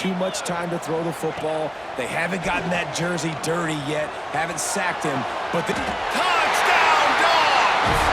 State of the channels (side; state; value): both; identical; correlation 1.00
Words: much time to throw the football. They haven't gotten that jersey dirty yet, haven't sacked him. But the touchdown, Dogs!